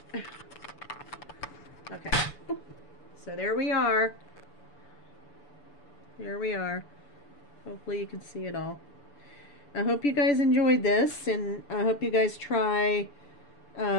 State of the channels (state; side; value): late; right; 6.9 ms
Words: Okay, so there we are. There we are. Hopefully you can see it all. I hope you guys enjoyed this, and I hope you guys try